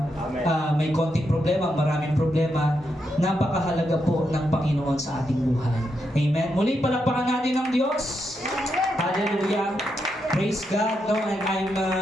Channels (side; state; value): both; normal; correlation 0.83